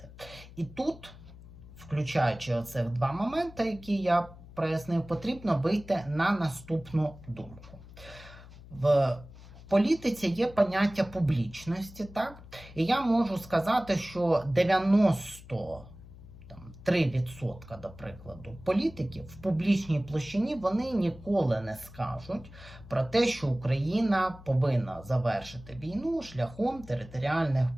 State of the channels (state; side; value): noise; left; hum, 18 dB below the sound